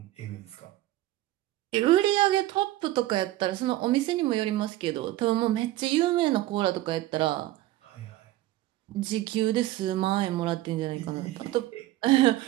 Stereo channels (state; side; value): quieter; left; 16.0 dB